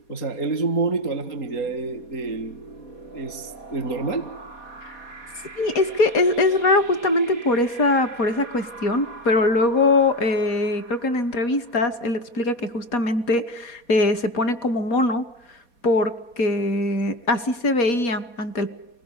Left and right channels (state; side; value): late; right; 4.2 ms